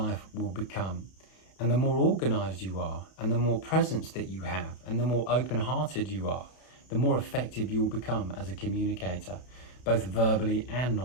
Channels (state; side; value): late; right; 32 ms